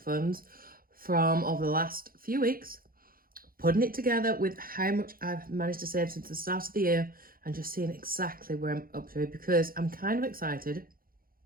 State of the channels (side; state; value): left; late; 0.42 ms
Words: from over the last few weeks, putting it together with how much I've managed to save since the start of the year and just seeing exactly where I'm up to because I'm kind of excited.